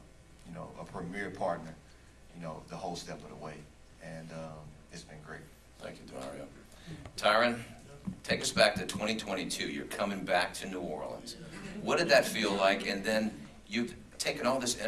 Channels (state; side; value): identical; both; correlation 1.00